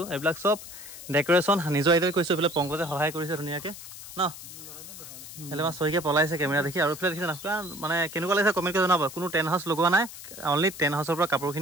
এইবিলাক চব ডেকৰেশ্যন নিজৰ আইডিয়াত কৰিছোঁ এইফালে পংকজে সহায় কৰিছে ধুনীয়াকৈ ন এলে মই চহিকে পলাইছে কেমেৰা দেখি আৰু এইফালে দেখিছে না মানে কেনেকুৱা লাগিছে কমেণ্ট কৰি জনাব কোনো টেণ্ট হাউচ লগোৱা নাই অনলি টেণ্ট হাউচৰ পৰা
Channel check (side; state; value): left; noise; hiss, 13 dB below the sound